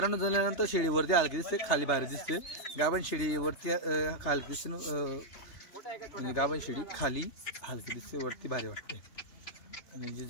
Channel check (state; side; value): late; right; 3.3 ms